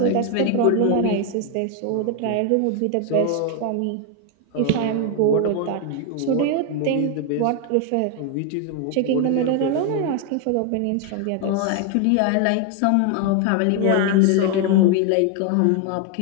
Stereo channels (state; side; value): different; both; correlation 0.01